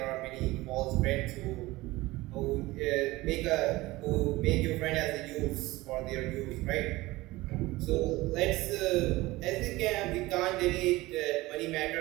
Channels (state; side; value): quieter; left; 19.7 dB